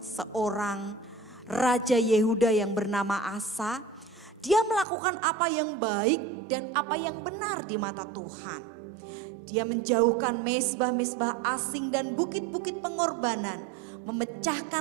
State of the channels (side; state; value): left; drops out; at 4.9 s